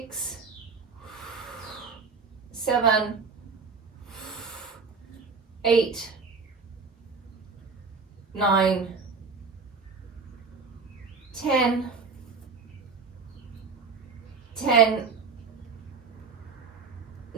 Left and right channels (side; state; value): left; quieter; 4.9 dB